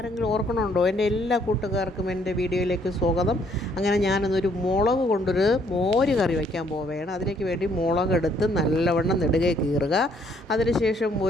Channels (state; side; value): normal; both; correlation 0.66